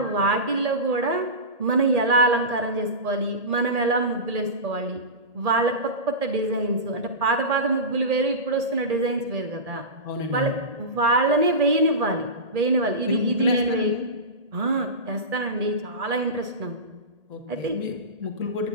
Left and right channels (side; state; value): left; late; 1.8 ms